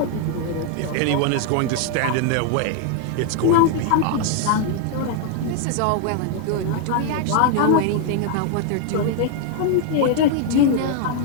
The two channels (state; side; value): different; both; correlation 0.00